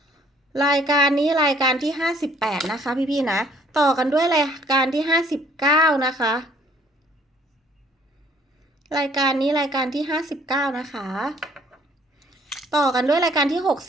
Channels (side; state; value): both; normal; correlation 0.59